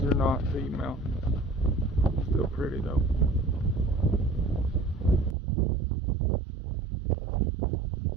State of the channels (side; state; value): left; drops out; at 5.4 s